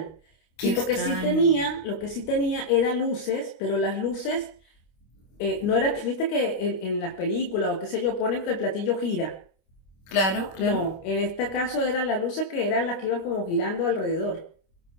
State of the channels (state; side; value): late; right; 26 ms